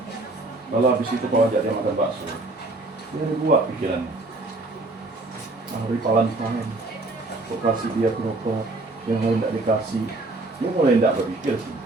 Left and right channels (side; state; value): left; quieter; 3.0 dB